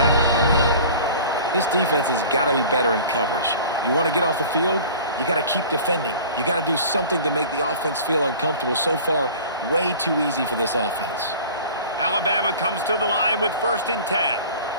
This defense has got to be better in coverage. You want to get off the field, you got to keep defending. You got to do something to make the offense feel uncomfortable. So far, way too easy for this offense. Alabama comes to the line with 1st and 10.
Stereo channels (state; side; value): inverted; both; correlation -0.42